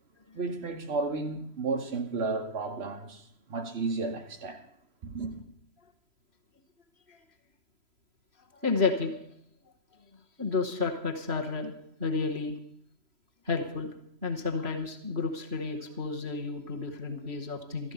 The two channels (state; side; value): late; left; 3.0 ms